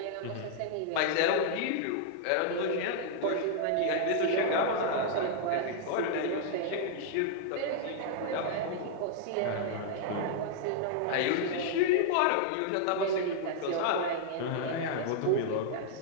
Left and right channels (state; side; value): different; both; correlation -0.01